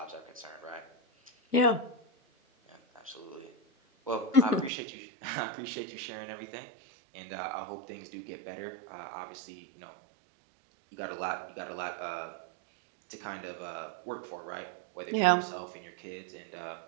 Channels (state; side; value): drops out; left; at 4.7 s